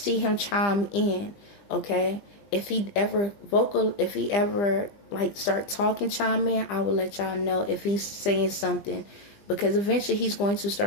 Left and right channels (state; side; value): late; right; 20 ms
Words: him chime in, okay? If he ever like start talking, chime in, I will let y'all know if he's saying something, because eventually he's going to